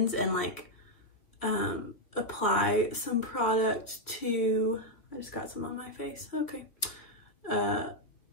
and like apply some product to, I just got some on my face, okay.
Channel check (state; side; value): late; right; 3.4 ms